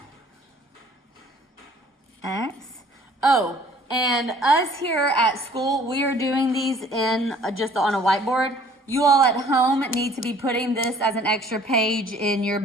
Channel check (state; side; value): normal; both; correlation 0.55